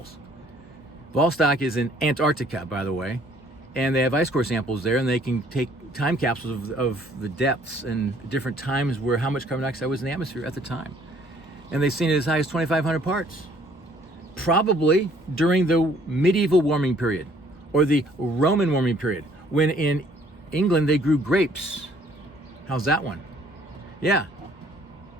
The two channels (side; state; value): both; normal; correlation 0.60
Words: Vostok is in Antarctica, by the way, and they have ice core samples there, and they can take time capsules of the depths and different times where how much carbon dioxide was in the atmosphere at the time. And they've seen it as high as 2,500 parts. Probably during the medieval warming period or the Roman warming period, when in England they grew grapes. How's that one? Yeah.